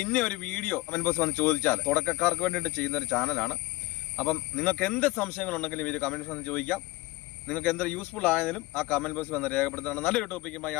ഇന്ന ഒരു വീഡിയോ കമന്റ് ബോക്സ് വന്ന് ചോദിച്ചാൽ, തുടക്കക്കാർക്ക് വേണ്ടിയിട്ട് ചെയ്യുന്ന ഒരു ചാനലാണ്. അപ്പം നിങ്ങൾക്ക് എന്ത് സംശയങ്ങളുണ്ടെങ്കിലും ഈ കമന്റ് ബോക്സ് വന്ന് ചോദിക്കാം. നിങ്ങൾക്ക് എന്ത് യൂസ്ഫുൾ ആയതിലും ആ കമന്റ് ബോക്സ് വന്ന് രേഖപ്പെടുത്തുകയാണ്. നല്ലൊരു ടോപ്പിക്കുമായി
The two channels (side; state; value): right; quieter; 20.8 dB